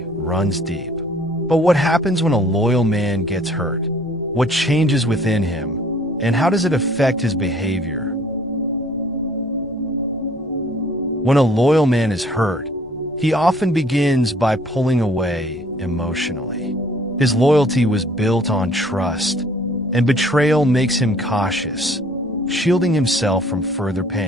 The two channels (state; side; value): noise; left; rumble, 25 dB below the sound